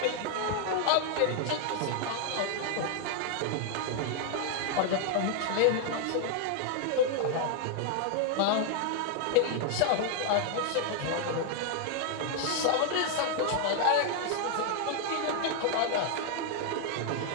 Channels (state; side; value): different; both; correlation 0.00